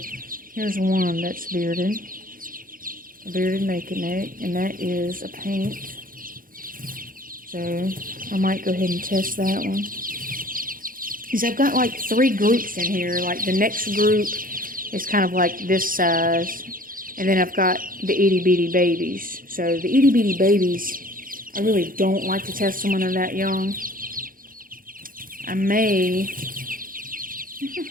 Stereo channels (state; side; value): late; left; 0.41 ms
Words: one that's bearded. A bearded naked neck, and that is a paint. So I might go ahead and test that one. Because I've got like 3 groups in here. Like the next group is kind of like this size. And then I've got the itty bitty babies. So the itty bitty babies, I really don't like to test them when they're that young. I may